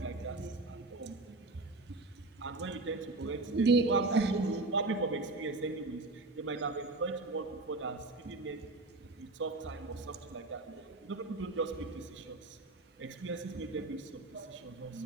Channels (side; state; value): left; quieter; 3.1 dB